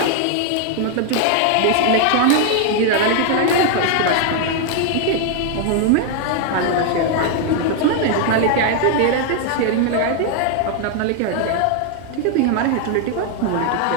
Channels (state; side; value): different; both; correlation 0.00